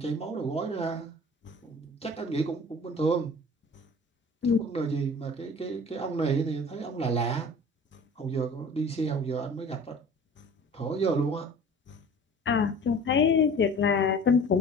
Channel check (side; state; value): both; normal; correlation 0.44